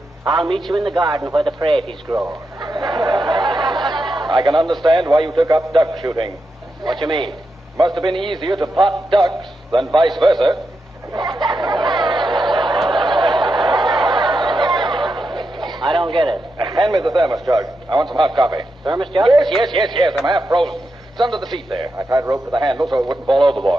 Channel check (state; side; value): normal; both; correlation 0.87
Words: "I'll meet you in the garden where the praties grow." I can understand why you took up duck shooting. What you mean? Must have been easier to pot ducks than vice versa. I don't get it. Hand me the thermos jug. I want some hot coffee. Thermos jug? Yes. I'm half frozen. It's under the seat there. I tied a rope to the handle so it wouldn't fall